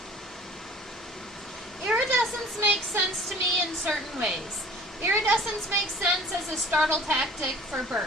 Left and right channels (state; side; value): normal; both; correlation 0.49